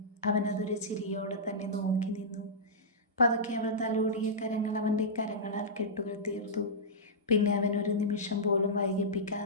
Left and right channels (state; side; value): normal; both; correlation -0.13